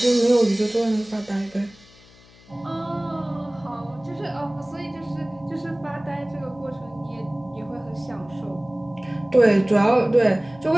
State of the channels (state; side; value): noise; left; hum, 25 dB below the sound